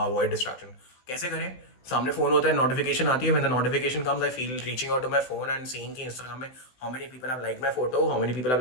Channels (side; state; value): right; late; 16 ms